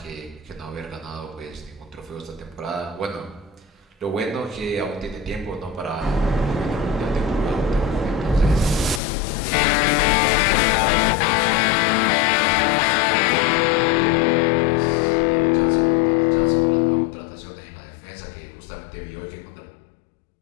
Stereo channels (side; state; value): right; drops out; at 9.0 s